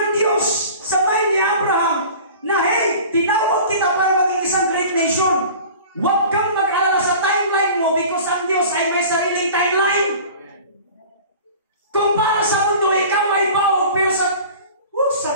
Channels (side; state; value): both; inverted; correlation -0.41